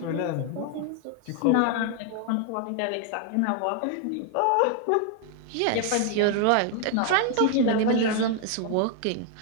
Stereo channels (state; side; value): different; both; correlation 0.00